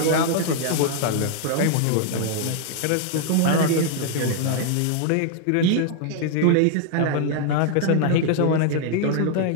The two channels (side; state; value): both; different; correlation 0.00